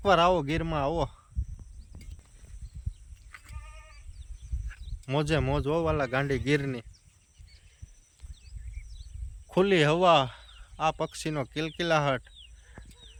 આવો ગીરમાં, આવો, મોજે મોજ વાલા ગાંડી ગીરની. ખુલ્લી હવા, આ પક્ષીનો કિલકિલાહટ,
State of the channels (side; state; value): both; identical; correlation 1.00